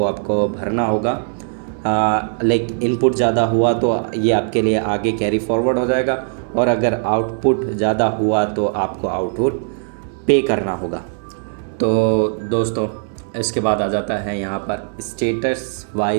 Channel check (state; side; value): silent; left; digital silence